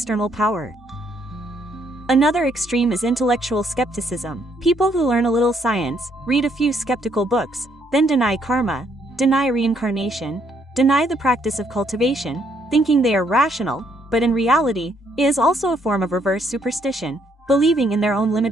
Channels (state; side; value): normal; both; correlation 0.70